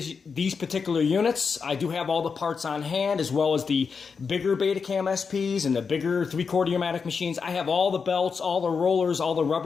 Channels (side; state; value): right; quieter; 5.5 dB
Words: particular units. I do have all the parts on hand, as well as the bigger Betacam SPs and the bigger 3/4 Umatic machines. I have all the belts, all the rollers, all the